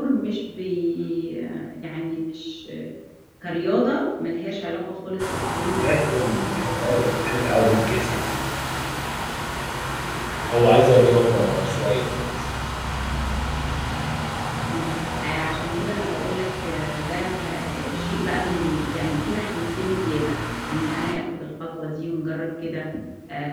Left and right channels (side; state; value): both; identical; correlation 1.00